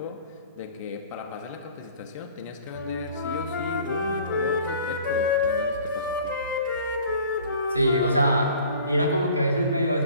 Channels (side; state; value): both; inverted; correlation -0.49